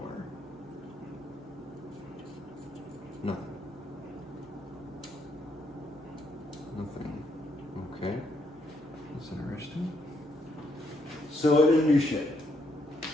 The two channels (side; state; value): both; normal; correlation 0.74